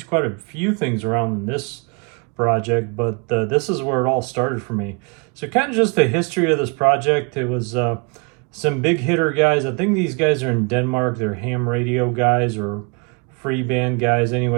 quite a few things around in this project, but this is where it all started for me. So kind of just the history of this project. It was some big hitter guys. I think these guys are in Denmark. They're ham radio guys or free band guys.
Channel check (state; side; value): quieter; left; 32.4 dB